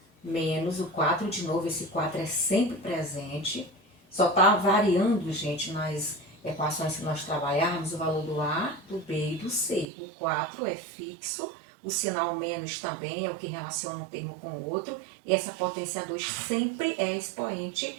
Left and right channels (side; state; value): left; drops out; at 9.9 s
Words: menos o 4 de novo, esse 4 é sempre presente. Só está variando, gente, nas equações que nós trabalharmos, o valor do A, do B e do C. O 4 é fixo, o sinal menos também é o que relaciona um termo com o outro, e essa potência 2 sempre é